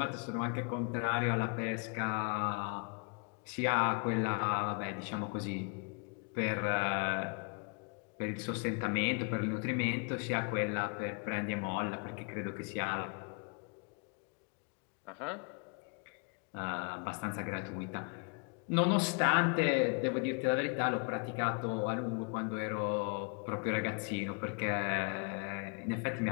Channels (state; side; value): quieter; right; 37.3 dB